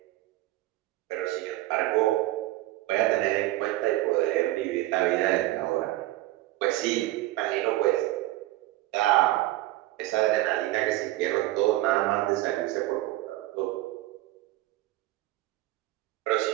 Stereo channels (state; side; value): quieter; left; 16.9 dB